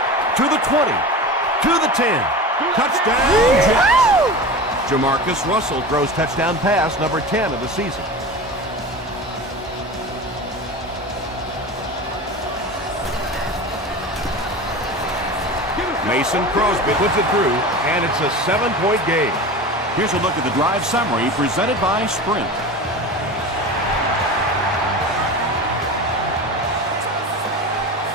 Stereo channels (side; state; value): both; normal; correlation 0.31